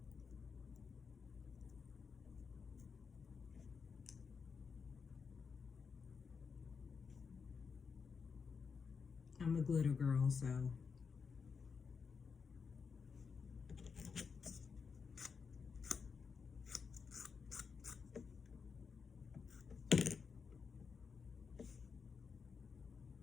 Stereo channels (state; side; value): quieter; right; 5.6 dB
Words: I'm a glitter girl, so